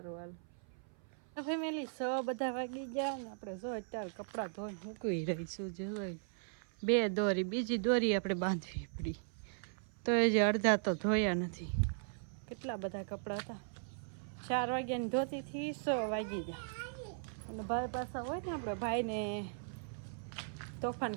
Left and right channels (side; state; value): left; silent; 52 dB below the other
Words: હાલો. ફેમિલી 6 બધા વાગી ગયા ને આપણે જો અત્યારે કપડાં ધોઈને મૂકી રહીશું. જોઈ 2 દોરી બીજી દોરી આપણે બાંધવી પડી તો એ જે અડધા તો ધોયા નથી. કેટલા બધા કપડાં હતા. 4 વાગ્યાની ધોતીથી 6 વાગી ગયા. અને ભાઈ પાછા હોય ને આપણે ભાઈને તોફાન